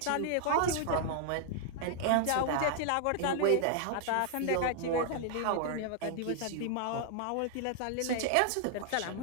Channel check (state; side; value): different; both; correlation -0.01